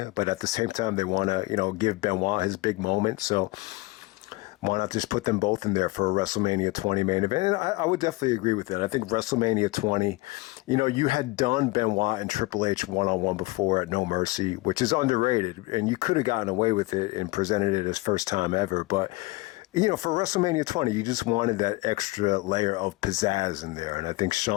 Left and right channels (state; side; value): quieter; right; 22.0 dB